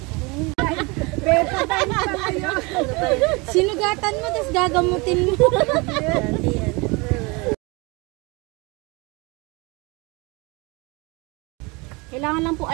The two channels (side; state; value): left; quieter; 27.0 dB